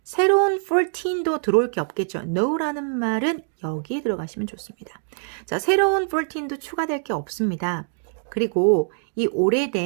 새로운 14도 들어올 게 없겠죠. no라는 말은 여기에 들어가시면 좋습니다. 자, 새로운 14도 추가될 게 없습니다. 그리고 이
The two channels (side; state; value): left; silent; 63 dB below the other